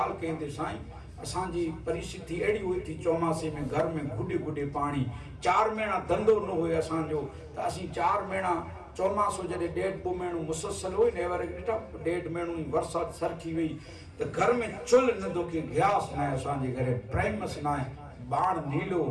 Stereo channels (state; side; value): identical; both; correlation 1.00